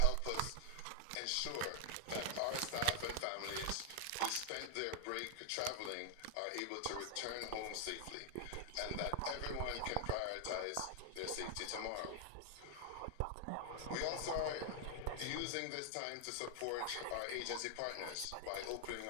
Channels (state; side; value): different; both; correlation 0.00